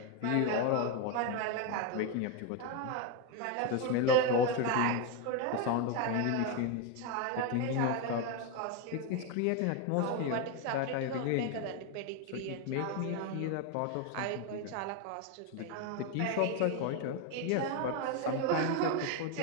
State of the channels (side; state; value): both; different; correlation 0.02